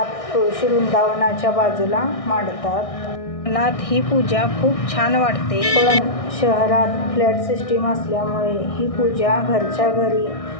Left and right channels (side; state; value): right; late; 1.6 ms